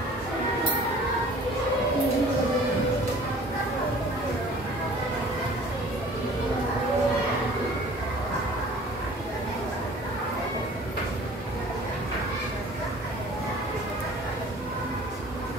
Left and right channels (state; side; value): normal; both; correlation 0.48